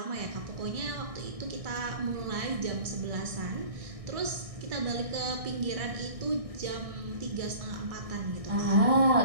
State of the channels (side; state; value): left; late; 1.6 ms